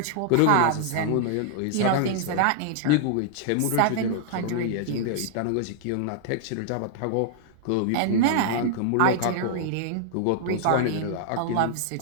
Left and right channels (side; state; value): both; different; correlation -0.01